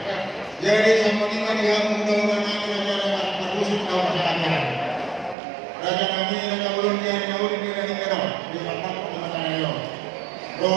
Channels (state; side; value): drops out; left; at 5.4 s